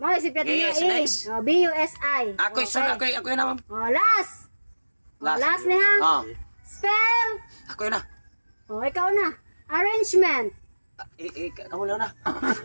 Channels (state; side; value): inverted; both; correlation -1.00